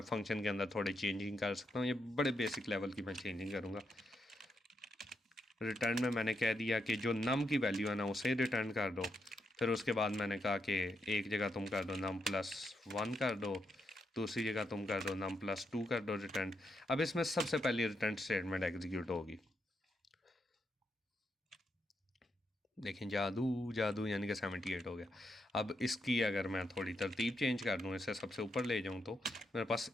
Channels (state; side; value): normal; both; correlation 0.81